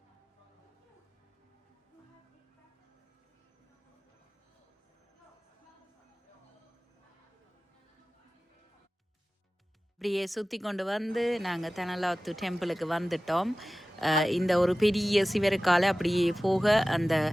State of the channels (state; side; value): normal; both; correlation 0.97